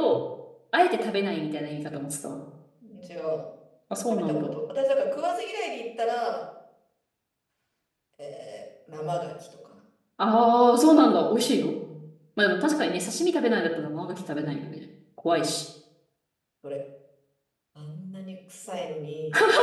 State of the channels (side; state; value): both; identical; correlation 1.00